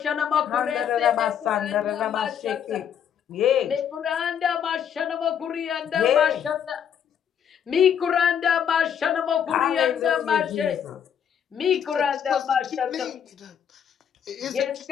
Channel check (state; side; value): quieter; right; 8.5 dB